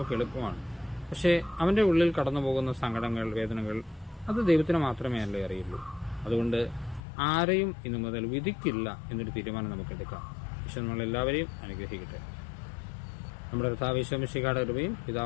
എളുപ്പമാണ്. പക്ഷേ അവന്റെ ഉള്ളിൽ കടന്നു പോകുന്ന സങ്കടങ്ങൾ, വേദനകൾ, അത് ദൈവത്തിന് മാത്രമേ അല്ലേ അറിയുള്ളൂ. അതുകൊണ്ട് ആരെയും ഇന്നു മുതൽ വിധിക്കില്ല എന്നൊരു തീരുമാനം നമുക്ക് എടുക്കാം. ഈശോ നമ്മളെല്ലാവരെയും അനുഗ്രഹിക്കട്ടെ. നമ്മുടെ കർത്താവ് ഈശോ മിശിഹായുടെ കൃപയും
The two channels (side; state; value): right; drops out; at 7.0 s